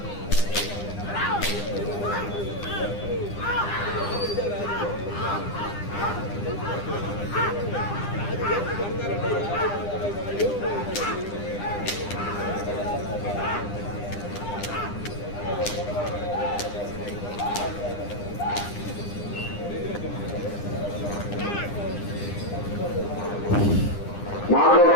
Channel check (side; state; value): right; late; 9.9 ms